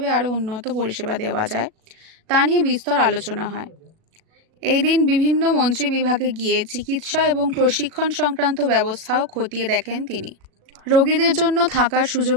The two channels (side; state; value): left; late; 37 ms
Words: আরও উন্নত পরিষেবা দেওয়া যায় তা নিয়ে বিস্তর আলোচনা হয়। এই দিন বিভিন্ন মন্ত্রী বিভাগে গিয়ে চিকিৎসা এবং প্রশিক্ষণ সংক্রান্ত ব্যবস্থাও খতিয়ে দেখেন তিনি। রোগীদের জন্য থাকার